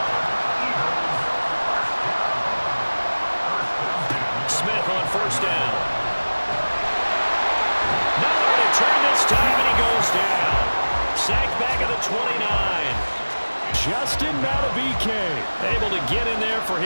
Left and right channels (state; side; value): inverted; both; correlation -1.00